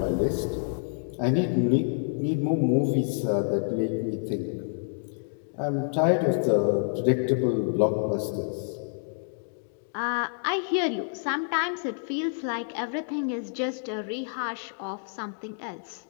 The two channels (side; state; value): right; silent; digital silence